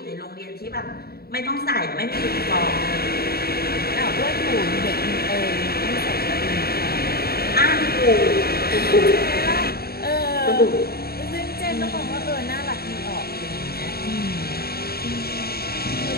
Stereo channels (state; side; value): late; right; 0.45 ms